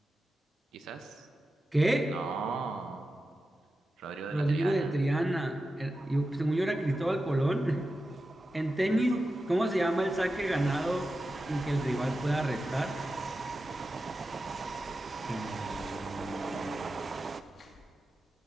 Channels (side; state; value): both; normal; correlation 0.92